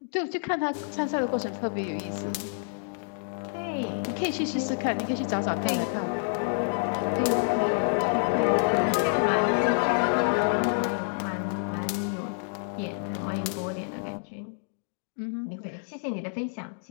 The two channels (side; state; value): right; silent; digital silence